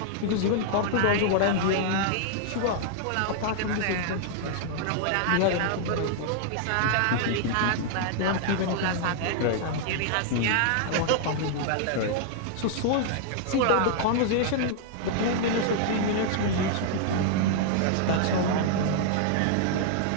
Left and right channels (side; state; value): both; different; correlation -0.01